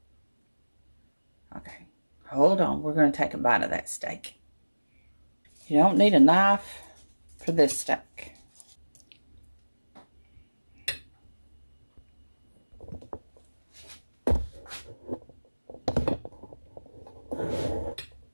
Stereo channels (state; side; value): inverted; both; correlation -1.00